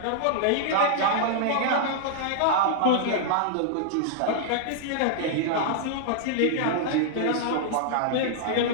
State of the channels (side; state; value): both; different; correlation -0.01